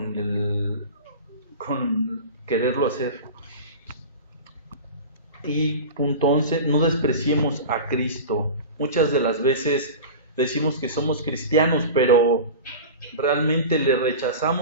quererlo hacer. Y punto 11, no despreciemos a Cristo. Muchas de las veces decimos que somos cristianos, pero realmente le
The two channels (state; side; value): inverted; both; correlation -0.31